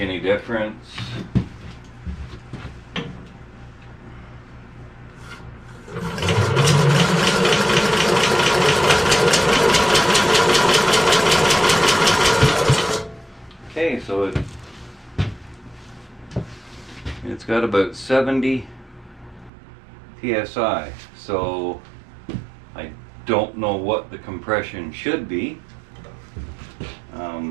difference. Okay, so it's got about 70 psi, so I don't know what the compression should be.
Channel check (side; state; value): left; drops out; at 19.5 s